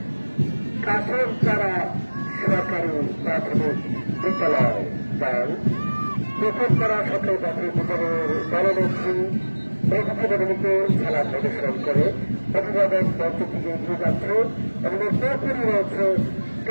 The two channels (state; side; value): inverted; both; correlation -1.00